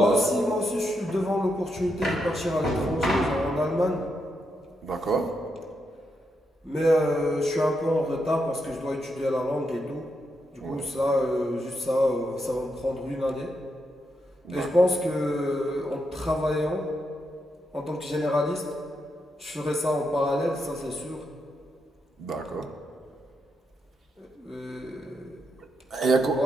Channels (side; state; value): both; normal; correlation 0.82